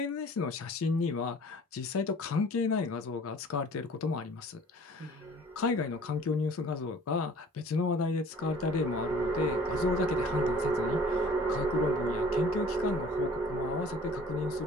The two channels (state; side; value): normal; both; correlation 0.50